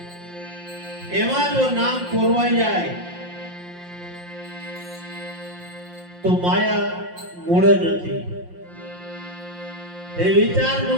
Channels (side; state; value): left; late; 5.7 ms